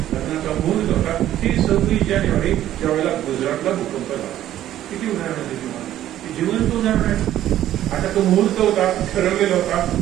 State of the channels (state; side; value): quieter; left; 12.6 dB